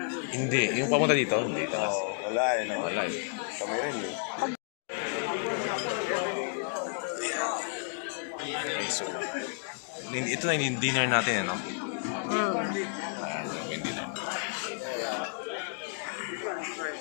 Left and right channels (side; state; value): right; silent; 57 dB below the other